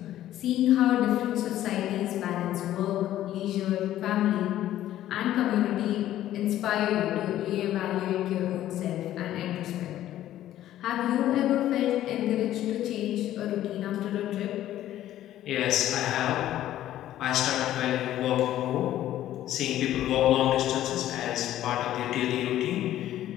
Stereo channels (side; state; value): right; quieter; 13.0 dB